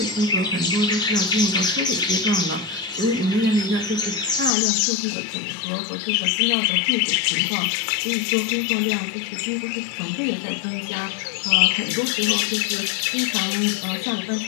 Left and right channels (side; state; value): right; drops out; at 4.5 s